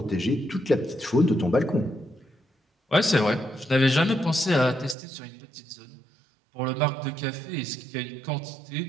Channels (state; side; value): drops out; left; at 5.0 s